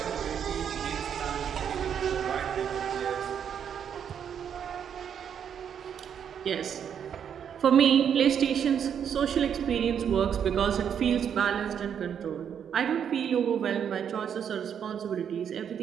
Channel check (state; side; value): quieter; left; 8.2 dB